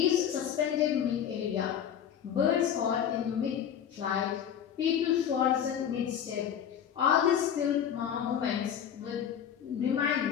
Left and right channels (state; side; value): quieter; right; 9.0 dB